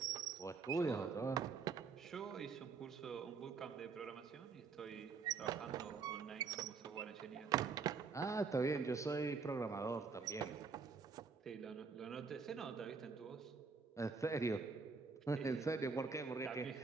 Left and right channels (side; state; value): left; quieter; 5.0 dB